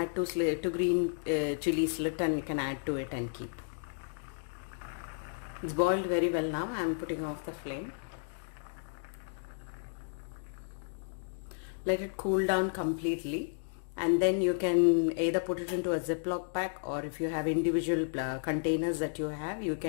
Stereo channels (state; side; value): silent; right; digital silence